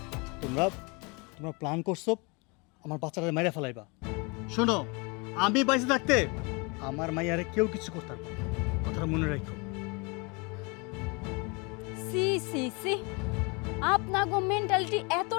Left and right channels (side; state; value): right; quieter; 29.5 dB